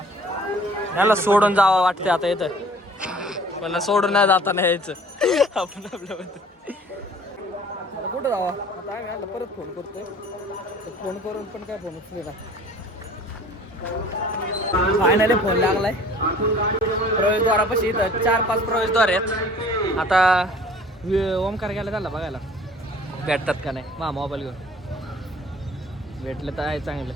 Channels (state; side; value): normal; both; correlation 0.50